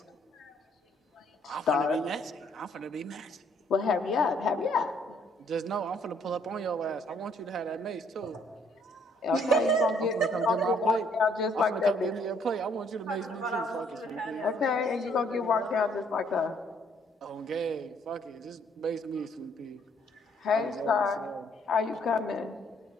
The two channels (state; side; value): normal; both; correlation 0.66